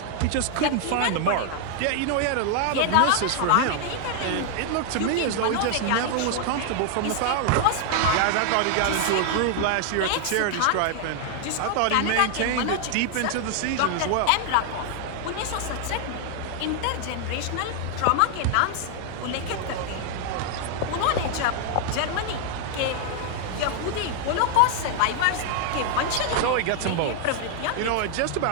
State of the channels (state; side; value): different; both; correlation 0.00